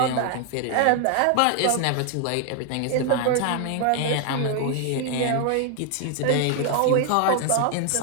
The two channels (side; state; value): both; different; correlation 0.00